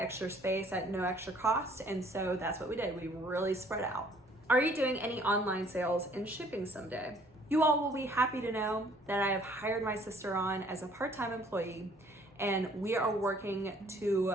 space at no extra cost, and so that's what we did. We really spread out. Are you doing any online sales and shipping someday? You all will be happy to know that I have hired my sister on as a part-time employee, and we are working to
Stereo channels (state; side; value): normal; both; correlation 0.59